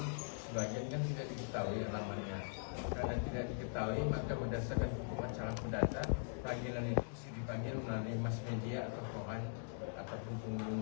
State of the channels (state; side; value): silent; right; digital silence